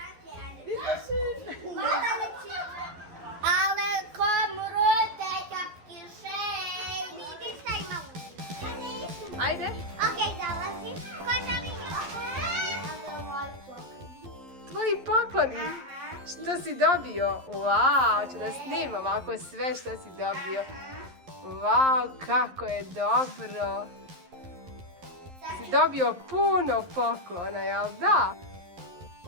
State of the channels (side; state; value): left; late; 11 ms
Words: Ale komrute kapki šej. Vidi šta imamo. Ajde. Okej, zalazim. Tvoji pokloni. Što si dobio? Wow, ću da snimam ovako sve što si dobio. Wow, kako je dobro. Si dobio puno poklona, jel da?